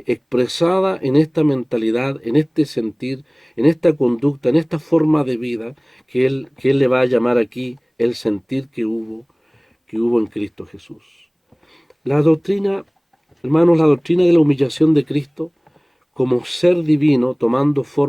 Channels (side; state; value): both; identical; correlation 1.00